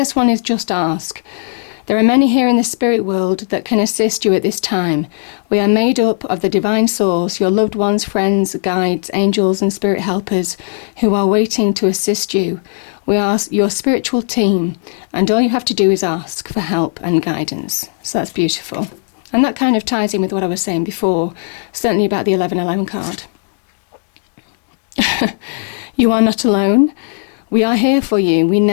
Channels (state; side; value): silent; right; digital silence